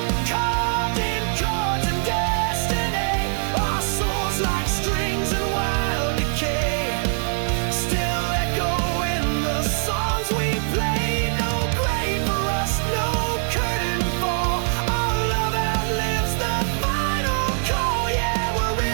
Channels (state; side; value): silent; left; 64 dB below the other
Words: carved in chords and destiny. Our souls like strings in wild decay, still echo in the songs we play. No grave for us, no curtain fall. Our love outlives the final call. Yeah, we'll